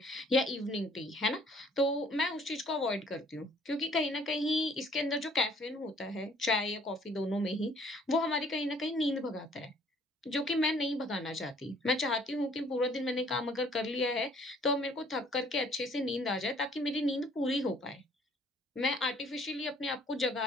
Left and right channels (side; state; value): both; normal; correlation 0.59